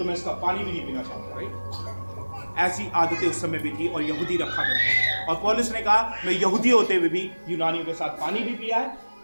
मैं इसका पानी भी नहीं पीना चाहता। राइट, ऐसी आदतें उस समय भी थी और यहूदी रखा करते। और पौलुस ने कहा मैं यहूदी होते हुए भी यूनानियों के साथ पानी भी पिया है,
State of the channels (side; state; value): both; inverted; correlation -1.00